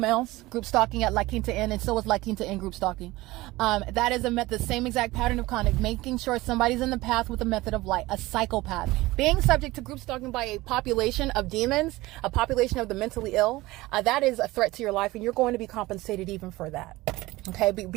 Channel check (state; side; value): quieter; left; 19.4 dB